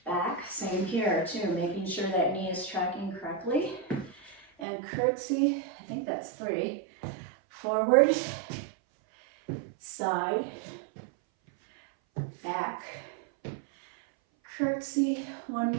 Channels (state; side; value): drops out; left; at 4.7 s